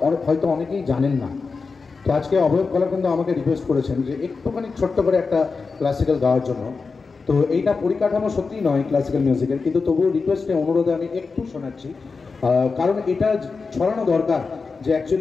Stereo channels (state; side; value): quieter; right; 4.6 dB